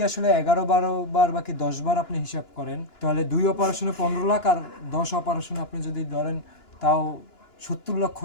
আসলে 11-12 বার বাকি 10 বার আপনি হিসাব করেন, তাহলে 2 অপারেশনে 15 লাখ আর 10 অপারেশনে আপনি যদি ধরেন তাও 70 লক্ষ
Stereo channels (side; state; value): right; late; 2.9 ms